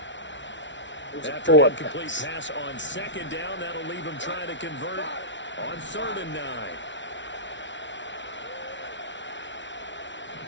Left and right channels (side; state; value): right; late; 0.54 ms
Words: After an incomplete pass on 2nd down, that'll leave him trying to convert on 3rd and 9.